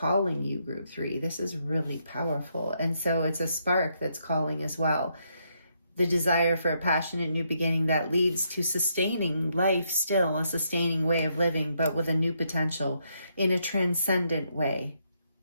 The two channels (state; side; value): inverted; both; correlation -0.76